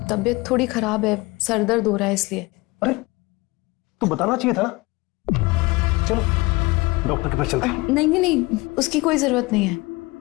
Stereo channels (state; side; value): quieter; right; 23.1 dB